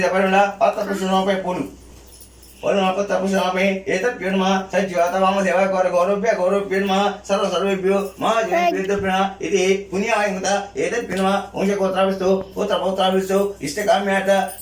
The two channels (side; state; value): both; identical; correlation 1.00